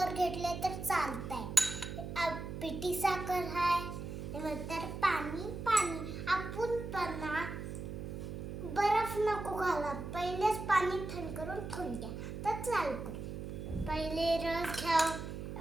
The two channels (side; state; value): right; noise; hum, 7 dB below the sound